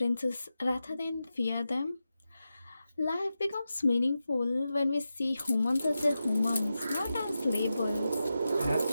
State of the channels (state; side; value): inverted; both; correlation -0.91